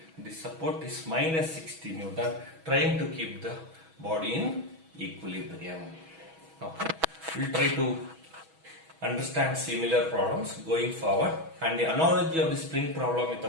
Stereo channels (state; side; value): late; left; 6.2 ms